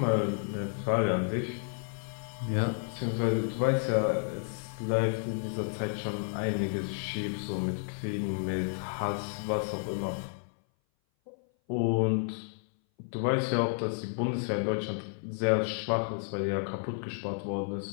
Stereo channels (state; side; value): silent; right; 57 dB below the other